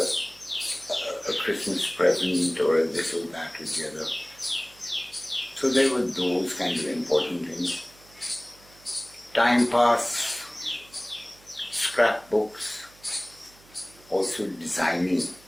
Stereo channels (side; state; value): right; noise; hum, 26 dB below the sound